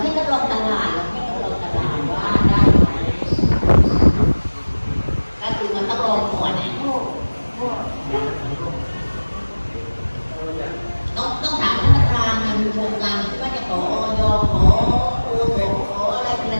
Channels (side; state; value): both; inverted; correlation -1.00